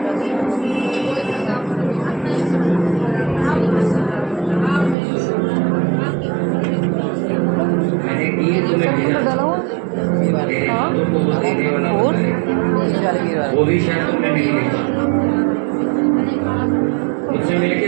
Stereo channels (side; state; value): left; drops out; at 5.0 s